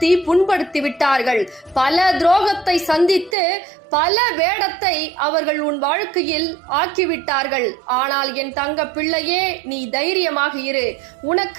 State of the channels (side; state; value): left; drops out; at 3.4 s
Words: புண்படுத்தி விட்டார்கள். பல துரோகத்தை சந்தித்து பல வேடத்தை அவர்கள் உன் வாழ்க்கையில் ஆக்கிவிட்டார்கள். ஆனால் என் தங்க பிள்ளையே, நீ தைரியமாக இரு.